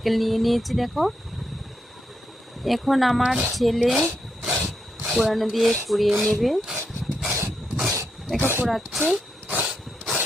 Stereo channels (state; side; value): normal; both; correlation 0.82